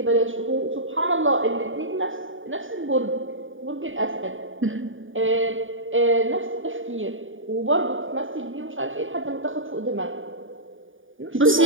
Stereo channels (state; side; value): late; left; 0.57 ms